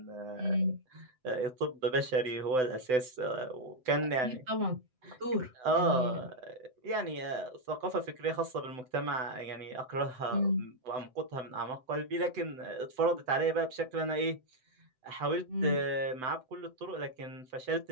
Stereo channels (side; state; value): left; late; 7.9 ms